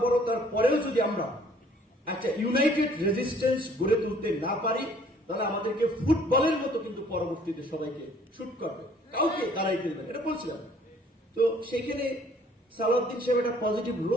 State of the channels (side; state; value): both; normal; correlation 0.58